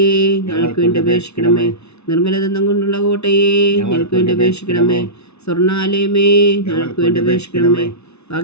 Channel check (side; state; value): right; late; 0.81 ms